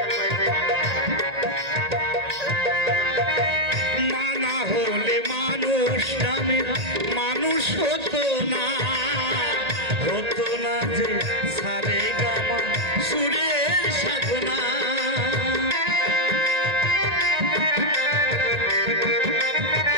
মানুষ হতো না যে সারে গামা সুরের সাধনা।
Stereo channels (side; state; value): left; late; 1.9 ms